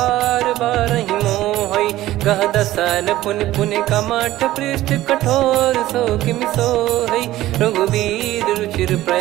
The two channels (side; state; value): left; quieter; 15.4 dB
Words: बारहि मोहै गह दसन पुन पुन कमठ पृष्ठ कठोर सो किम सोहै रघुवीर रुचिर